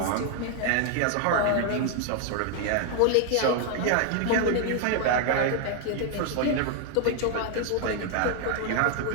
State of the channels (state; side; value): different; both; correlation 0.00